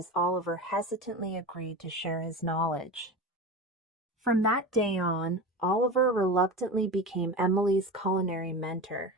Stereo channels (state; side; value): normal; both; correlation 0.27